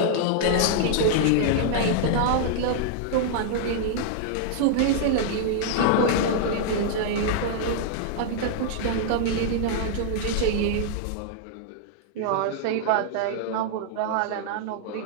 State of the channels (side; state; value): both; different; correlation -0.01